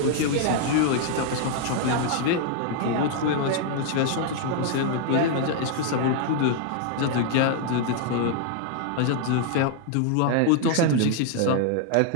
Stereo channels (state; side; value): different; both; correlation 0.00